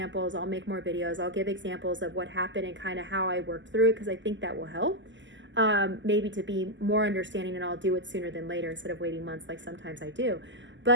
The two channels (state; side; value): late; left; 0.54 ms